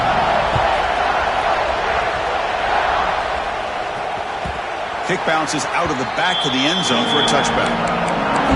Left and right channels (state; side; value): identical; both; correlation 1.00